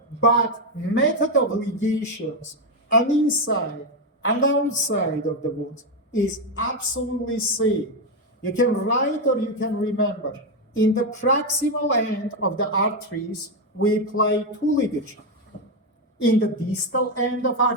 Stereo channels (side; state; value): both; normal; correlation 0.07